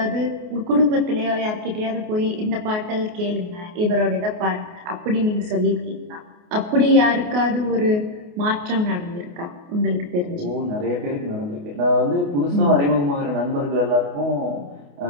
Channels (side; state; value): left; late; 28 ms